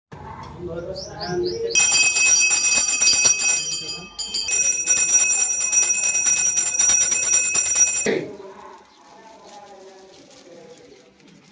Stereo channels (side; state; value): both; identical; correlation 1.00